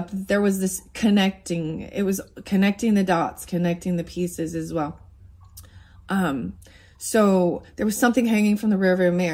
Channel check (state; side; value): identical; both; correlation 1.00